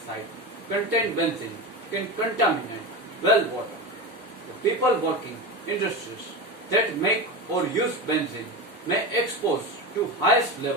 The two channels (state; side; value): normal; both; correlation 0.23